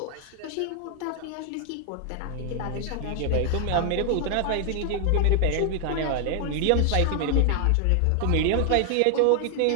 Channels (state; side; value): different; both; correlation 0.00